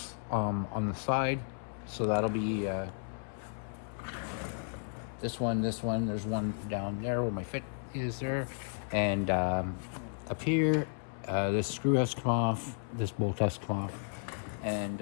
on the side. So that'll be this one, there's one down there where my fit is there, and up here, this screw has to come off, this bolt has to come off,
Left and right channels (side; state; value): right; silent; 55 dB below the other